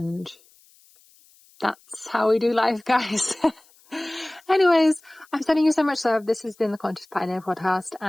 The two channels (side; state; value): left; noise; hiss, 30 dB below the sound